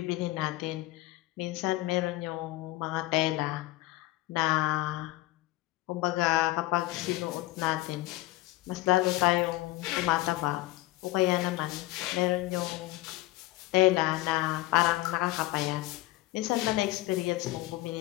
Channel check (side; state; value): right; quieter; 18.5 dB